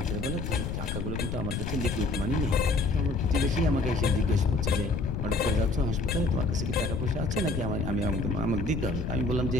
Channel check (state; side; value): noise; left; rumble, 4 dB below the sound